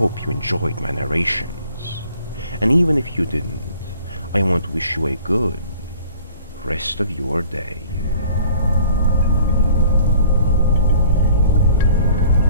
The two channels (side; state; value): both; inverted; correlation -0.52